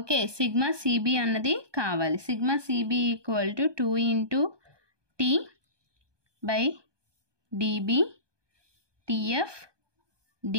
σCB అన్నది కావాలి. σCB equal to 2 into T/dB TF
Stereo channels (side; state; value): left; late; 1.2 ms